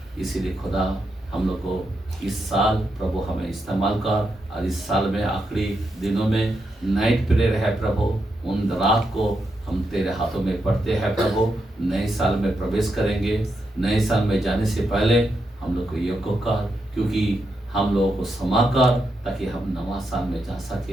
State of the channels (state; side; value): normal; both; correlation 0.84